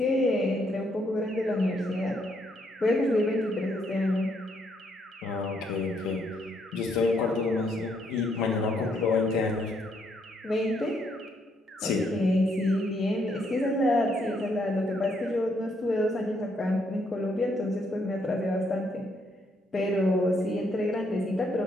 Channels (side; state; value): both; normal; correlation 0.73